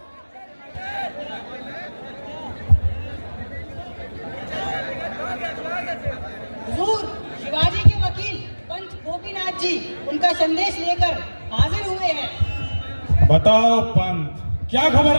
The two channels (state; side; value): inverted; both; correlation -1.00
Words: हुजूर, शिवाजी के वकील पंत गोपीनाथ जी उनका संदेश लेकर हाजिर हुए हैं। बताओ पंत, क्या खबर